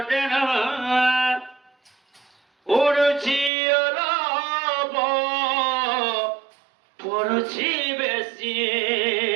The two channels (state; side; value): drops out; left; at 3.5 s